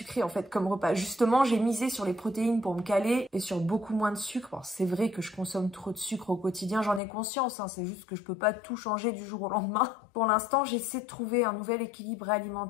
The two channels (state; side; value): drops out; right; at 7.0 s